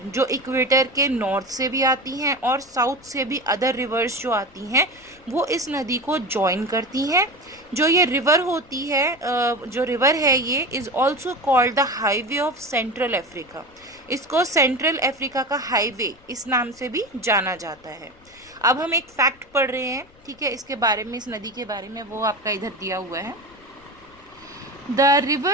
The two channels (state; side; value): noise; left; rumble, 28 dB below the sound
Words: जो इक्वेटर के नॉर्थ से भी आती हैं और साउथ से भी अदर रिवर्स जो आती हैं वो इस नदी को जॉइन करती हैं। जो ये रिवर होती है, जो रिवर है, ये is also called the highway of central Africa. इसको सेंट्रल अफ्रीका का हाईवे इस नाम से भी जाना जाता है। अब हम एक फैक्ट पढ़ रहे हैं, ठीक है, इसके बारे में, इस नदी के बारे में, वो आपका इधर दिया हुआ है। The